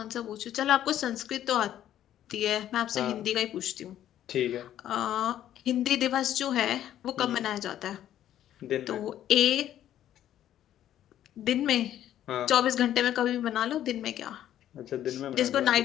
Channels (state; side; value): quieter; right; 11.6 dB